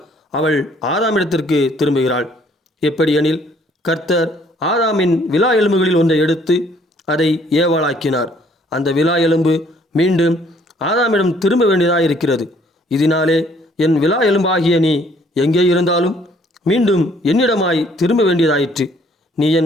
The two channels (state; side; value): normal; both; correlation 0.62